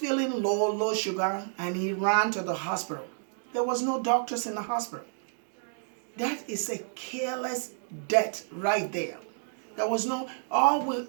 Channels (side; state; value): left; silent; digital silence